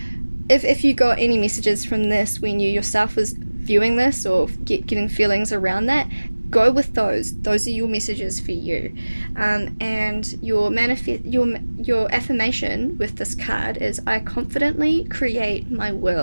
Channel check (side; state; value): both; inverted; correlation -1.00